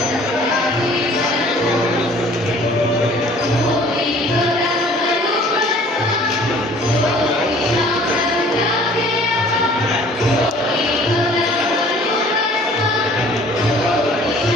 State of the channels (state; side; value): normal; both; correlation 0.52